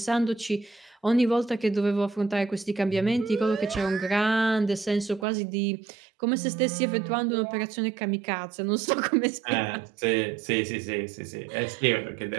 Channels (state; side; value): drops out; left; at 5.2 s